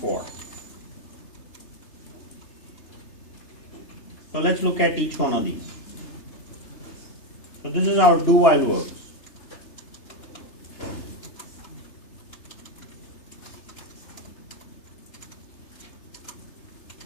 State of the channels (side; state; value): right; late; 3.3 ms